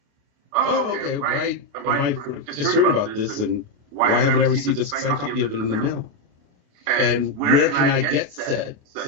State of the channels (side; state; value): left; late; 28 ms